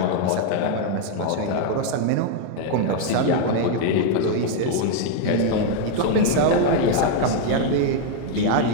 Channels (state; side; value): different; both; correlation 0.00